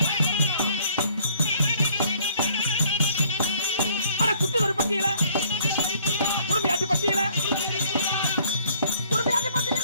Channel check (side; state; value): both; inverted; correlation -0.61